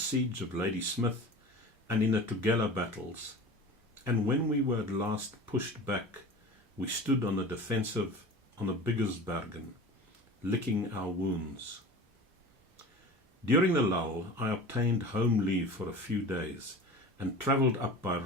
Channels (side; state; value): both; normal; correlation 0.36